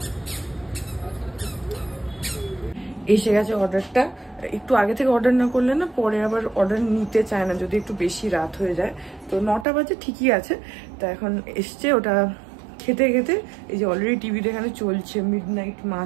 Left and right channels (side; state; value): left; drops out; at 9.7 s